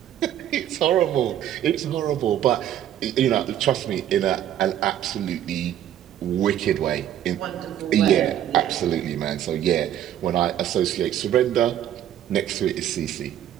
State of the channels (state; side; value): quieter; left; 11.2 dB